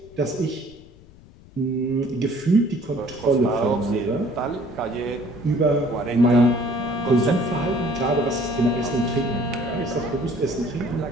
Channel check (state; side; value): noise; left; rumble, 23 dB below the sound